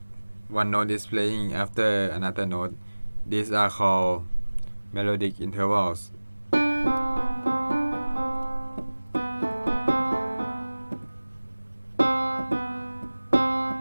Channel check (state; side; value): inverted; both; correlation -1.00